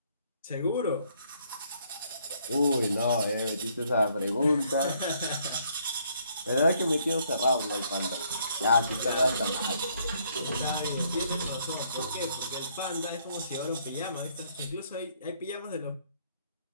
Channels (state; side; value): inverted; both; correlation -0.68